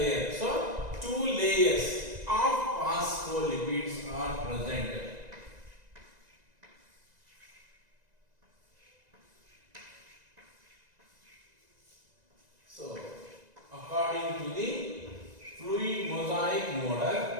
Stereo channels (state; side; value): late; left; 1.9 ms